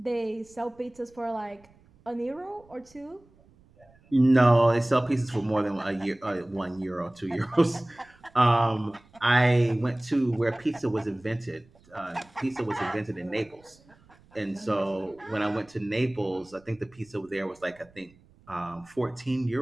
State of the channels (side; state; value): right; noise; rumble, 29 dB below the sound